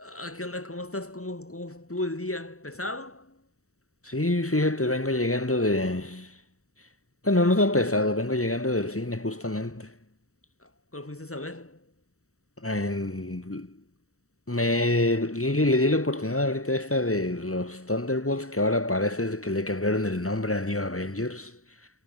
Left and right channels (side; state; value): right; late; 0.64 ms